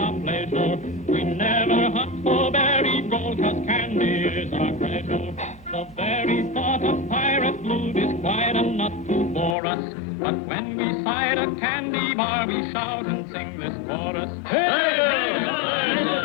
pleasure. We never hunt for berry gold, 'cause candy is our treasure. The very thought of pirate loot is quite a nut to bore us. But when we sight a candy bar, we shout and sing this chorus. Hey, hey,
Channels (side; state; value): right; drops out; at 9.6 s